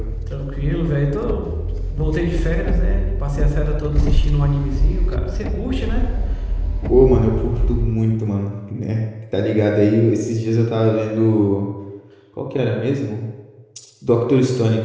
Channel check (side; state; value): both; identical; correlation 1.00